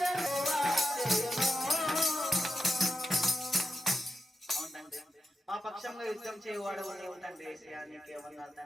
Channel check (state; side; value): normal; both; correlation 0.88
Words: యెహోవా చేయును. మా పక్షంగా యుద్ధం చేయవాడు నీవు తండ్రి. యేసయ్యా నీకే వందనాలు